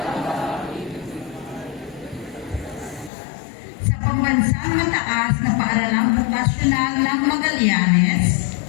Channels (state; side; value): drops out; right; at 3.1 s